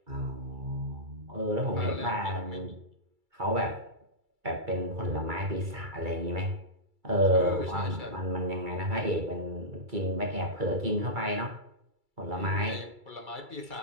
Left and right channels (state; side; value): late; left; 2.3 ms